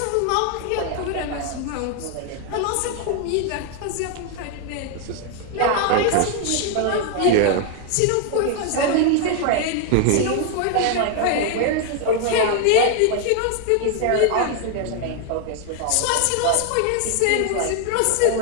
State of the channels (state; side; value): different; both; correlation 0.01